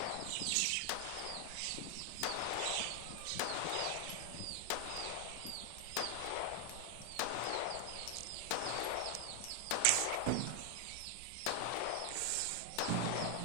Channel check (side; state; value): both; different; correlation 0.00